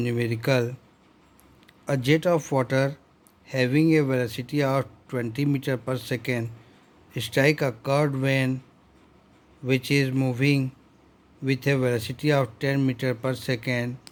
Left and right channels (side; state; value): both; identical; correlation 1.00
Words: numerical. A jet of water having a velocity of 20 meter per second strike a curved vane which is moving with a velocity of 10 meter per second.